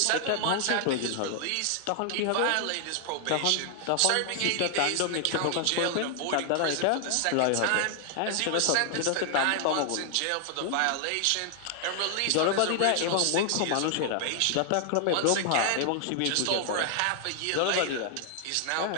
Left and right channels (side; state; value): both; different; correlation 0.00